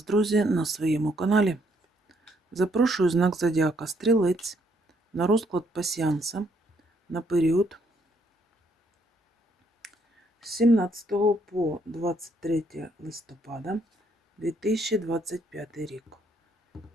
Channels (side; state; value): both; normal; correlation 0.71